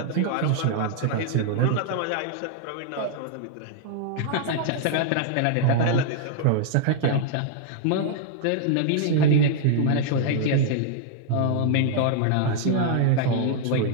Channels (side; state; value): both; different; correlation -0.01